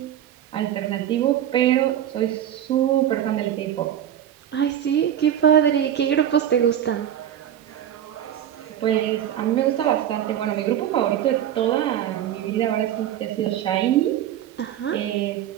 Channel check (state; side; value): quieter; left; 10.7 dB